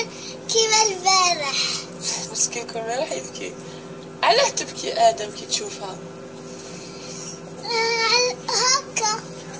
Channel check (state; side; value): identical; both; correlation 1.00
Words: كيما البارح. مسكين كل ما راح يبكي. علاه تبكي ادم كي تشوفها؟ هكا.